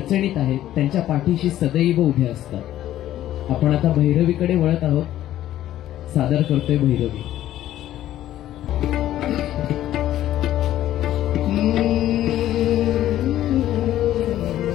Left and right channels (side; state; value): right; quieter; 13.0 dB